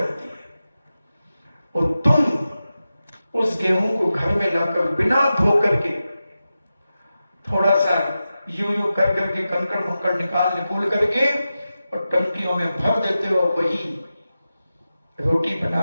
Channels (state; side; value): inverted; both; correlation -0.92